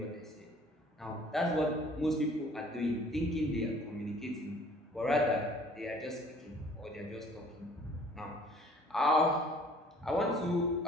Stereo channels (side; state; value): both; normal; correlation 0.54